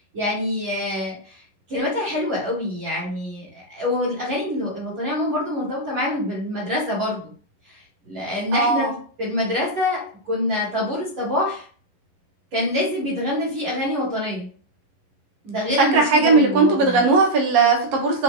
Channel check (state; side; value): late; left; 11 ms